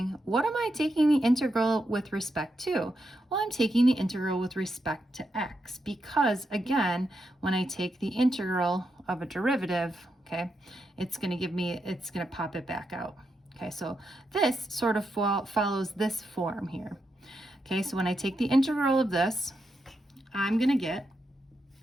what am I taking the integral with respect to? Well, I'm taking the integral with respect to x because, again, when I take the integral of a derivative, okay, it's going to pop it back out. Okay, so this sort of follows this form here. Okay, so when I take the integral of this, I'm going to get,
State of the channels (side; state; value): both; normal; correlation 0.84